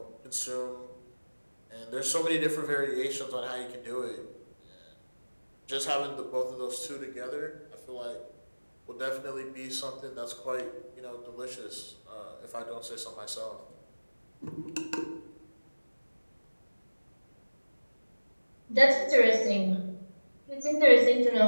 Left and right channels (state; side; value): inverted; both; correlation -1.00